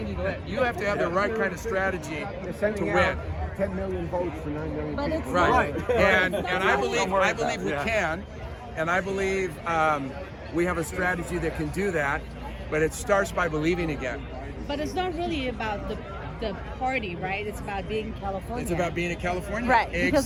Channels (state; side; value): identical; both; correlation 1.00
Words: to let- You have to have the right kind of strategy to win. 10 million votes for 9 million But people. it's Right. not. And I believe we can, and I believe we have a strategy that can do that, but it starts by believing again. But it's not really about the party, right? It's about being California. It's about being a Californian. Right, because